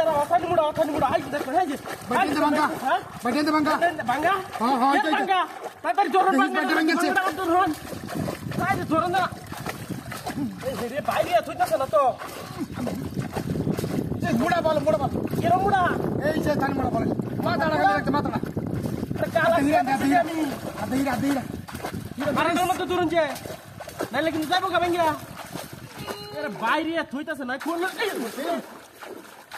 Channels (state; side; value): identical; both; correlation 1.00